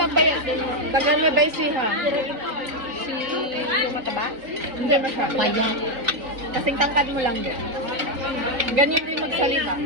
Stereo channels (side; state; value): left; late; 4.0 ms